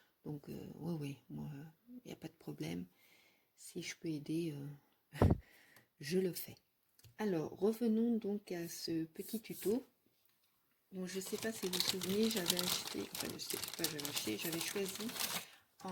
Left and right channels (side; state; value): both; identical; correlation 1.00